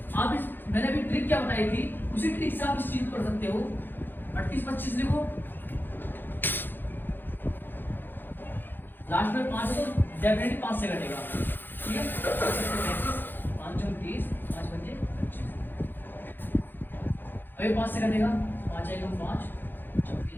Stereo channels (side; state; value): right; late; 0.095 ms